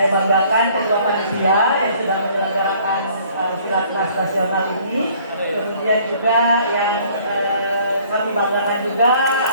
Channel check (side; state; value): both; inverted; correlation -0.58